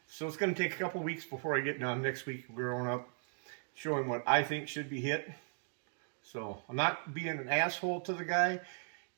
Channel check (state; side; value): silent; left; 53 dB below the other